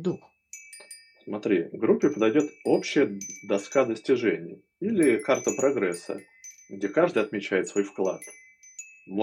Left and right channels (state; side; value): identical; both; correlation 1.00